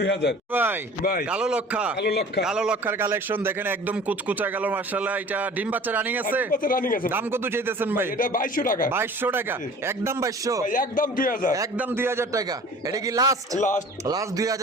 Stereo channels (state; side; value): normal; both; correlation 0.45